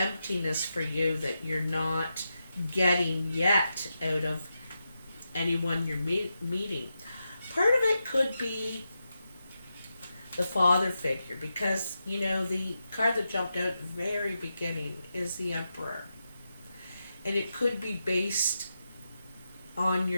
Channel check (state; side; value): inverted; both; correlation -0.87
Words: for you that you're not getting yet out of anyone you're meeting. Part of it could be the father figure, because you know the card that jumped out at the very beginning is the Emperor, and it could be based on